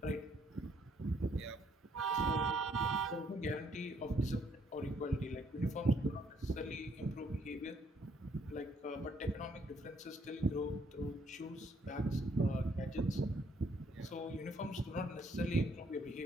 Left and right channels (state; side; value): normal; both; correlation 0.68